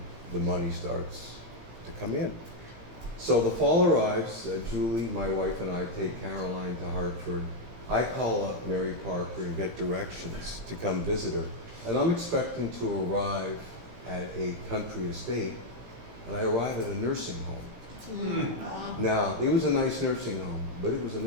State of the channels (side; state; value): left; late; 17 ms